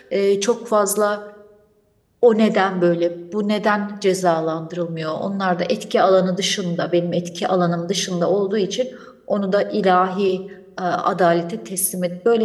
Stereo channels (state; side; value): identical; both; correlation 1.00